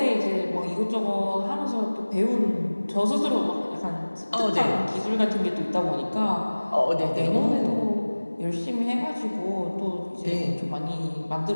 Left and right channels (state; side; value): inverted; both; correlation -1.00